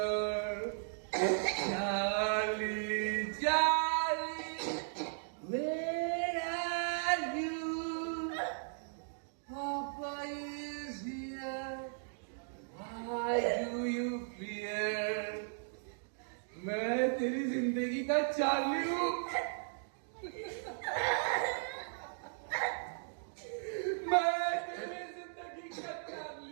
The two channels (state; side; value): silent; left; digital silence